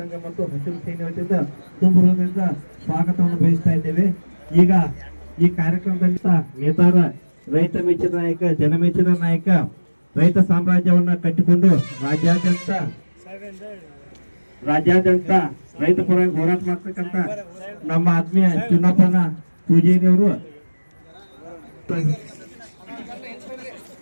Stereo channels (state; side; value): inverted; both; correlation -1.00